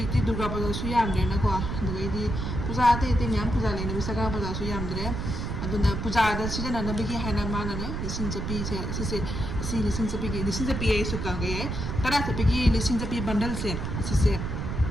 ti durga pa suyam na ko. Dugay di puja ate tinyam puja le na bisa ka pa suyam dre. Aduna puja da sida na nabigi hana mana ne lising japi se lising japi ay suka gay tara sa pigi lising japi bundle se sise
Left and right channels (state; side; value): noise; right; rumble, 3 dB below the sound